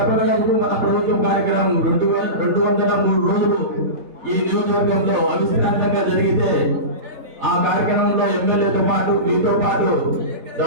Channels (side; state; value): left; late; 3.7 ms